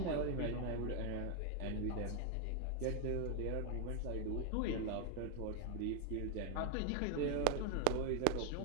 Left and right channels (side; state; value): both; different; correlation 0.01